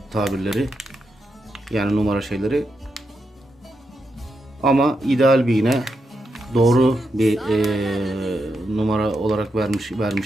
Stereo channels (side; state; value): both; normal; correlation 0.85